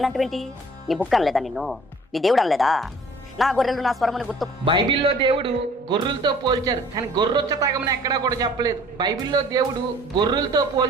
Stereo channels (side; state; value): both; normal; correlation 0.52